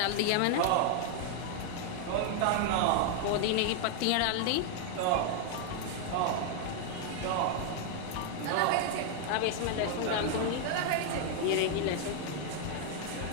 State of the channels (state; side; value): different; both; correlation 0.00